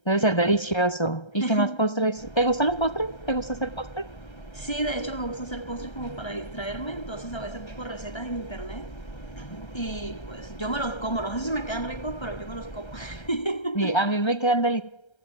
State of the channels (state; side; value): late; right; 1.3 ms